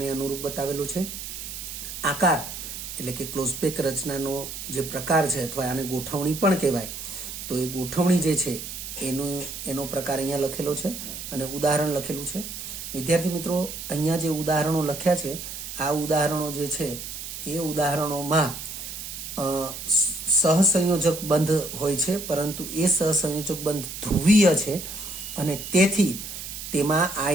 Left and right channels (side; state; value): right; noise; hiss, 8 dB below the sound